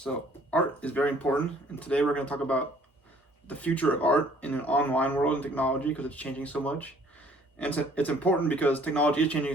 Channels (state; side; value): normal; both; correlation 0.58